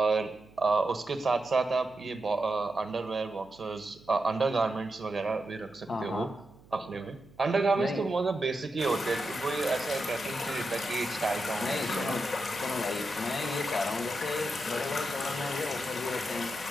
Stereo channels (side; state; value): right; noise; hum, 25 dB below the sound